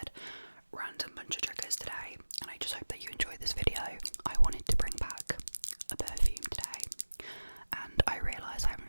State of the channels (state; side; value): inverted; both; correlation -1.00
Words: random bunch of triggers today, and I just hope that you enjoyed this video. I wanted to bring back a perfume today, and I realise I